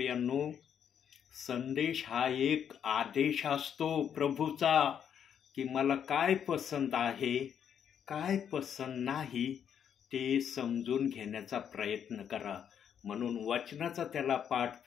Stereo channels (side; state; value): right; quieter; 8.5 dB